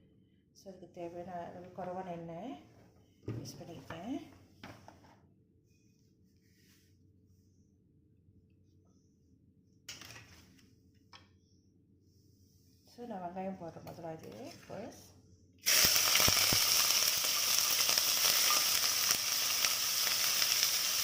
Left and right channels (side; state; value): both; identical; correlation 1.00